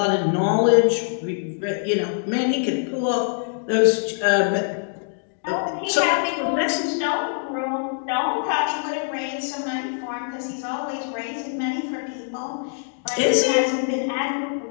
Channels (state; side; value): silent; right; 63 dB below the other